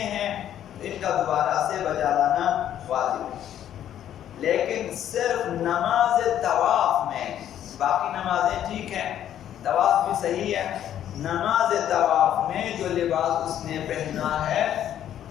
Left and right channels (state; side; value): quieter; right; 10.8 dB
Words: ہیں تو ان کا دوبارہ سے بجا لانا واجب ہے، لیکن صرف نماز طواف میں، باقی نمازیں ٹھیک ہیں، طواف بھی صحیح ہے، نماز طواف میں جو لباس اس نے پہنا ہے